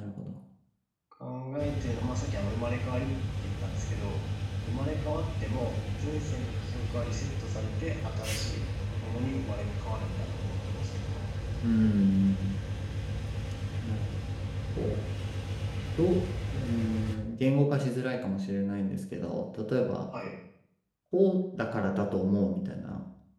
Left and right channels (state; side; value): identical; both; correlation 1.00